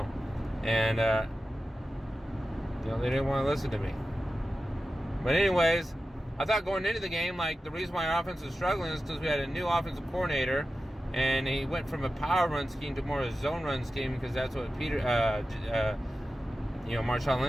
and they didn't want to listen to me. But anyways, I thought going into the game, like, the reason why our offense was struggling is because we had a new offensive coordinator, and he went from a power run scheme to more of a zone run scheme, because that's what Marshawn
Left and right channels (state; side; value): normal; both; correlation 0.93